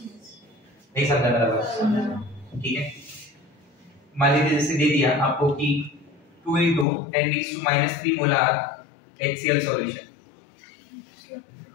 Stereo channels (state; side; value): drops out; right; at 6.9 s